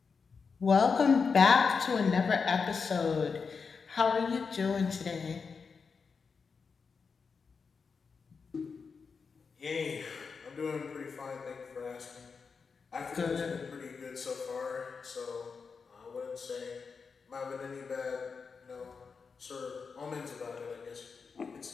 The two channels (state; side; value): quieter; right; 5.3 dB